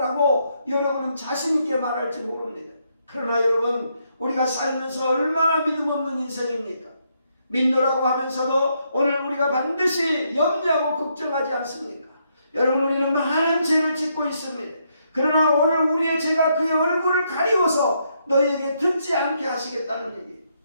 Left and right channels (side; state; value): both; inverted; correlation -0.76